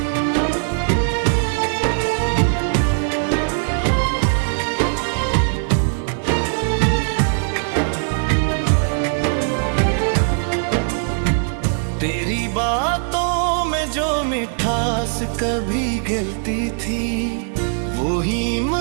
तेरी बातों में जो मिठास कभी गिलती थी, वो ही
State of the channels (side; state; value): left; silent; 66 dB below the other